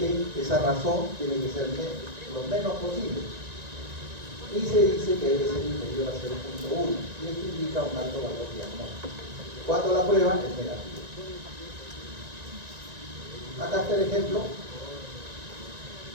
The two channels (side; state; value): left; late; 1.9 ms